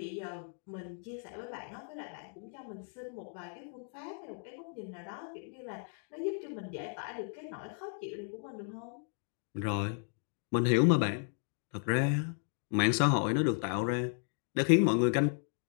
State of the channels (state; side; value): silent; right; 55 dB below the other